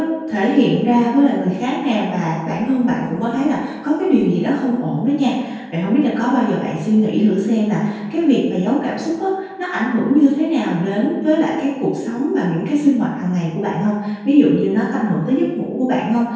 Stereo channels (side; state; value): both; identical; correlation 1.00